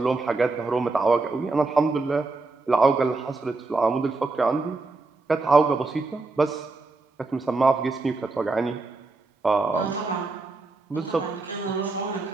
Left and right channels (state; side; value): quieter; left; 3.6 dB